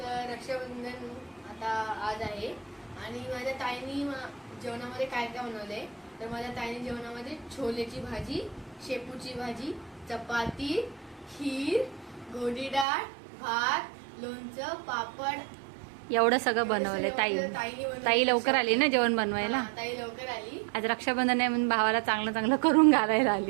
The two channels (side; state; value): left; drops out; at 12.9 s